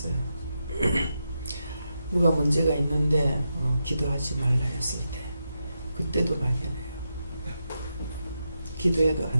누가 문제가 있는데 기도하지 말라 했을 때 그때도 막연해요. 기도해도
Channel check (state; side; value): inverted; both; correlation -0.86